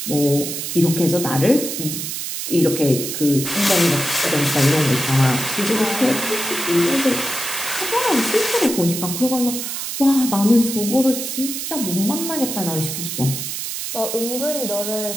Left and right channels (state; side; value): noise; right; hiss, 5 dB below the sound